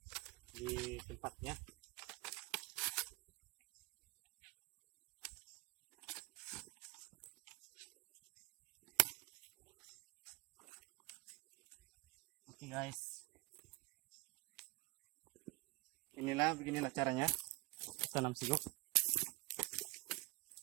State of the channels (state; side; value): quieter; left; 23.9 dB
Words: di tempatnya. Oke guys, beginilah caranya tanam sigup.